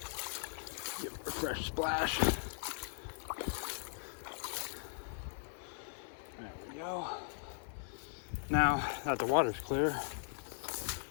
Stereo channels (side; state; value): right; silent; 52 dB below the other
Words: Give it a fresh splash. There we go. Now that the water's clear,